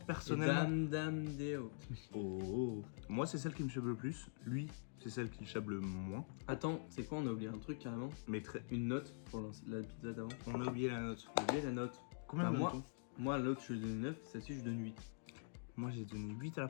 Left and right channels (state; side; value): silent; right; digital silence